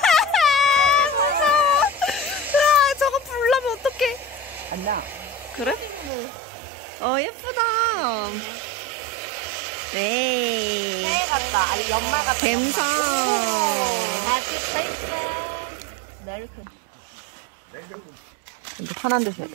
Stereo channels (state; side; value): drops out; left; at 6.1 s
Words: 저거 불나면 어떡해. 안 나. 그래? 예쁘다. 네. 같다. 아니 연말 같다. 갬성. 근데 편한 데서.